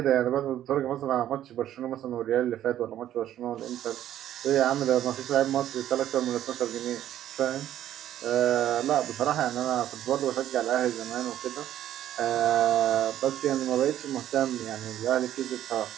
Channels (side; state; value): left; quieter; 11.9 dB